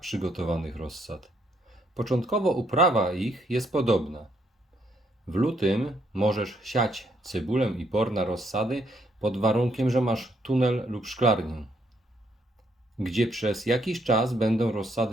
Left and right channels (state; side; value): normal; both; correlation 0.72